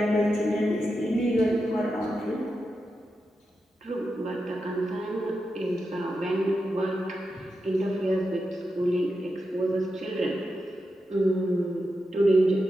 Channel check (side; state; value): both; normal; correlation 0.88